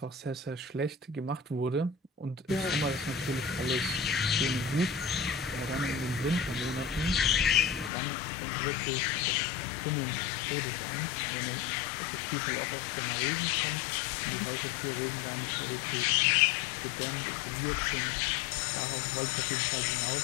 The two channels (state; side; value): drops out; right; at 7.9 s